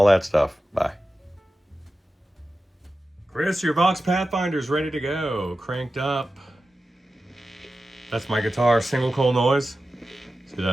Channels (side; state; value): both; normal; correlation 0.93